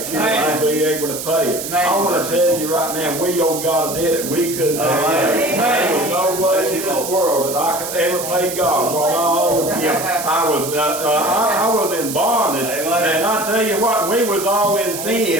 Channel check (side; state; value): right; noise; hiss, 7 dB below the sound